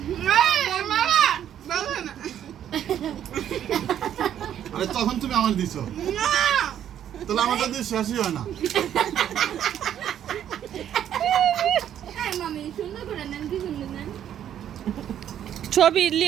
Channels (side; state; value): left; quieter; 10.2 dB